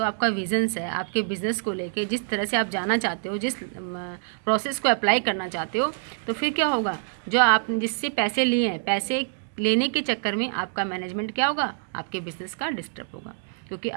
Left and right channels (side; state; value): left; silent; digital silence